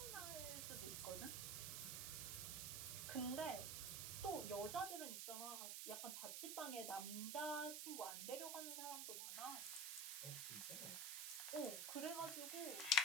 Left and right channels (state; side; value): noise; right; hiss, 2 dB below the sound